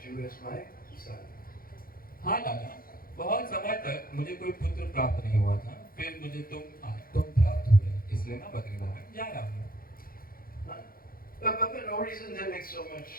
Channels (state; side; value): late; right; 0.42 ms